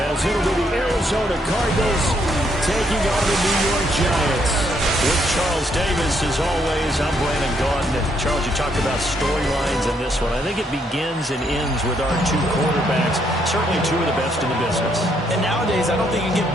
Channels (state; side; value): normal; both; correlation 0.73